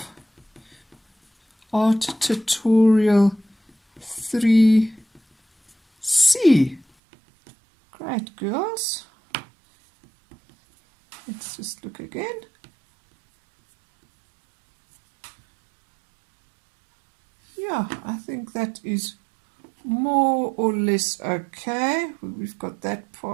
Art Tutorial 3C. Great, girls. Let's just look again. Yeah, I think that is more or less okay. We've got that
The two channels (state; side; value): drops out; left; at 6.9 s